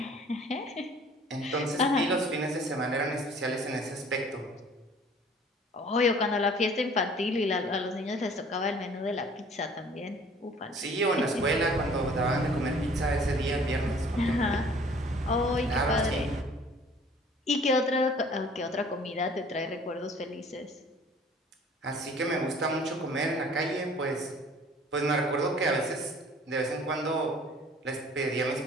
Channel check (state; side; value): normal; both; correlation 0.52